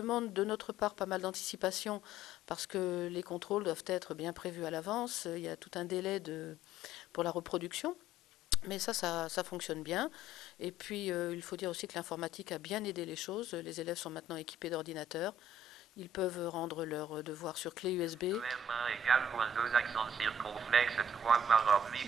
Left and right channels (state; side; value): normal; both; correlation 0.56